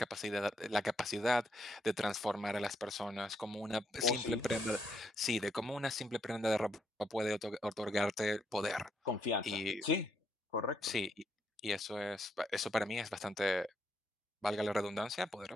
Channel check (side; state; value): both; normal; correlation 0.76